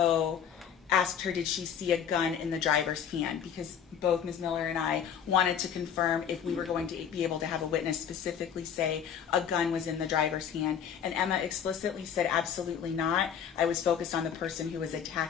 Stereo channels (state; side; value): quieter; right; 8.1 dB